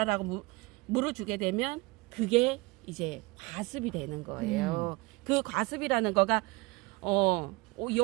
물을 주게 되면 그게 이제 과습이 되는 거예요. 그 과습이라는 거가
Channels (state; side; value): quieter; left; 24.3 dB